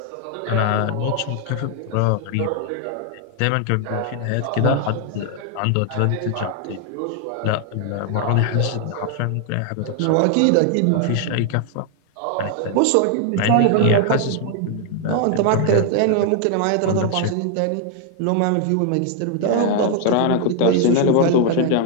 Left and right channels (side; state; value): both; different; correlation 0.00